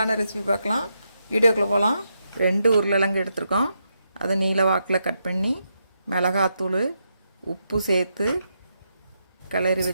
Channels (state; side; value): inverted; both; correlation -0.82